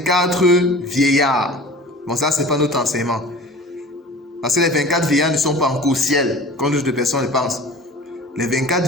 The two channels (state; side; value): normal; both; correlation 0.41